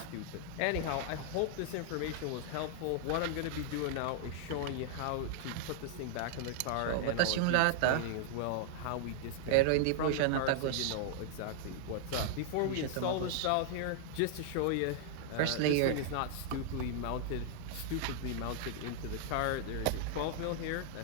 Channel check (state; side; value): different; both; correlation -0.01